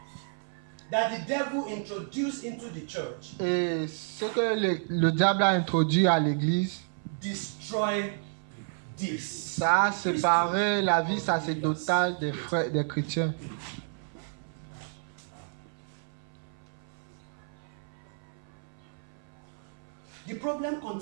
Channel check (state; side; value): silent; left; 55 dB below the other